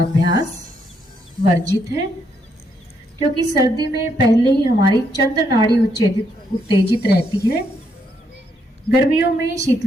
वर्जित है, क्योंकि सर्दी में पहले ही हमारी चंद्र नाड़ी उत्तेजित रहती है। गर्मियों में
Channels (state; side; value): normal; both; correlation 0.76